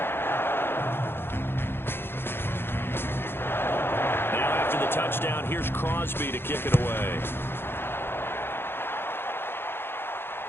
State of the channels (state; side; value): late; right; 0.11 ms